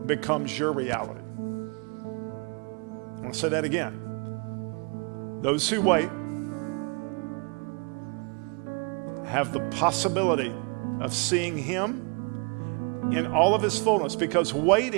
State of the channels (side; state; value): left; quieter; 34.8 dB